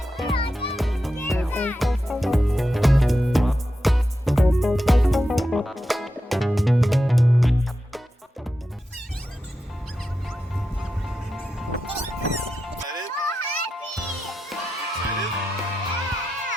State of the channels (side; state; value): both; normal; correlation 0.89